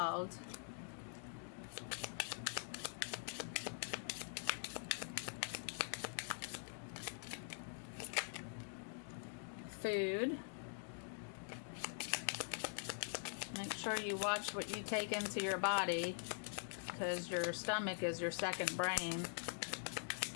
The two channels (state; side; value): silent; right; digital silence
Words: Food. Make sure you watch what you take into your body, because your stomach is your second brain.